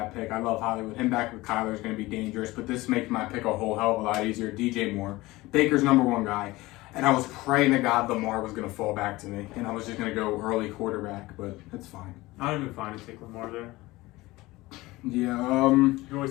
pick. I love Hollywood. Him back with Kyler is going to be dangerous, but this makes my pick a whole hell of a lot easier. DJ Moore, Baker's #1 guy, and I was praying to God Lamar was going to fall back to me, and I was just going to go early quarterback, but it's fine. I don't even find to take Lamar there. Yeah. You always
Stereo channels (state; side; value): quieter; right; 19.8 dB